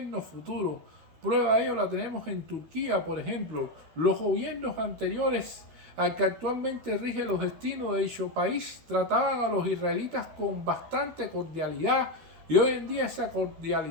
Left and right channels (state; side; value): late; left; 13 ms